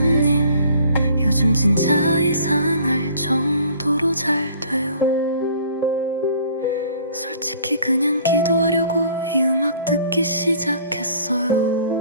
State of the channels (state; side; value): inverted; both; correlation -0.54